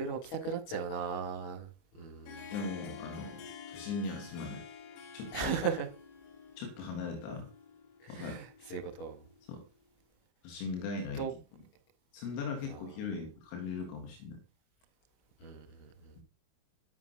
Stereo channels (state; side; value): late; right; 24 ms